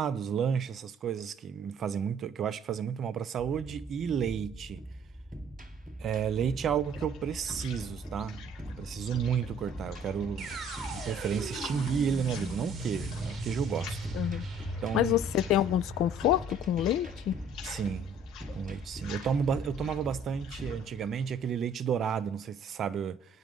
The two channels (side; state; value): both; normal; correlation 0.56